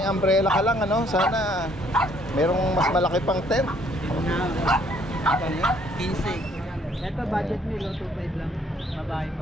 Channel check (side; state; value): both; normal; correlation 0.64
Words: umbrella ka lang, ano? Sana merong mas malaki pang tent. 15. Ito budget nilo 2.5 lang. Babae